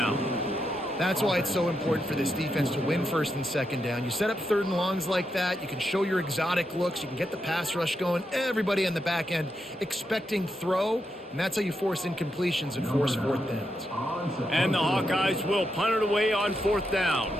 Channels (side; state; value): both; normal; correlation 0.84